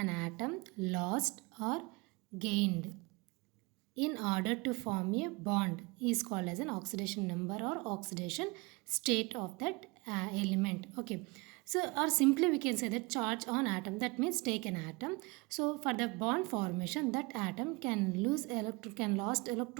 atom lost or gained in order to form a bond is called as an oxidation number or oxidation state of that element. Okay, so or simply we can say that charge on atom, that means take an atom. So for the bond formation, that atom can lost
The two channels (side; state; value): left; quieter; 26.5 dB